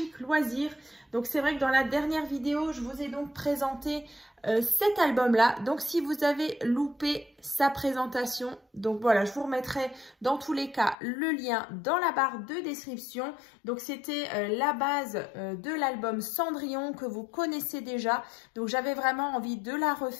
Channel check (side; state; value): right; drops out; at 11.0 s